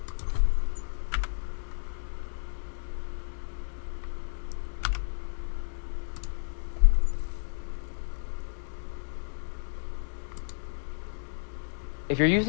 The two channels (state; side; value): silent; right; digital silence